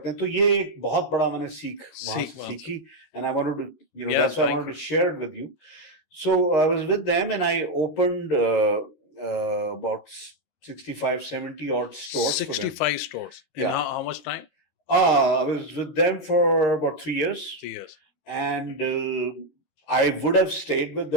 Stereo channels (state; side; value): late; right; 13 ms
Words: हैं. तो ये एक बहुत बड़ा मैंने वहां से सीखी, and I wanted to, you know, that's why I wanted to share it with you. So I was with them, and I opened about 65, 70 odd stores. 65 stores. Yeah. How much time? I was with them for about 3 years. 3 years. And I would have stayed with